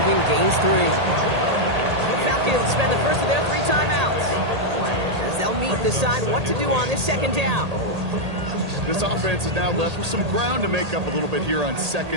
gains 3. The Falcons spend the first of their 3 timeouts as they'll meet and decide what to do on this 2nd down. This offense is now left with some ground to make up a little bit here on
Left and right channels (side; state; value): left; late; 1.8 ms